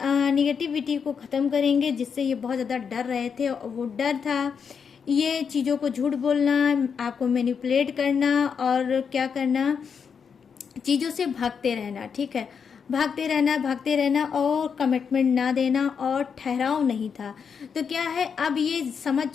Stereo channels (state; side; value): quieter; right; 6.5 dB